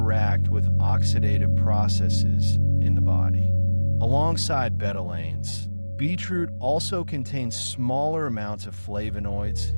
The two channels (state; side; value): inverted; both; correlation -1.00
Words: with oxidative processes in the body. Alongside betalains, beetroot also contains smaller amounts of flavonoids